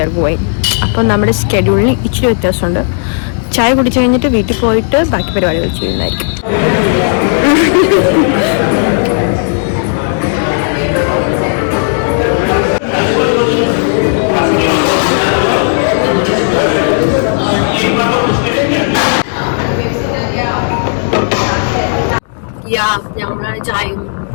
ആർ ഗോയിങ്. അപ്പം നമ്മുടെ സ്കെഡ്യൂളിന് ഇച്ചിരി വ്യത്യാസമുണ്ട്. ചായ കുടിച്ചു കഴിഞ്ഞിട്ട് വീട്ടിൽ പോയിട്ട് ബാക്കി പരിപാടികൾ ചെയ്യുന്നതായിരിക്കും. ഞങ്ങളാണ്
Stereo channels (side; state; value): right; silent; 63 dB below the other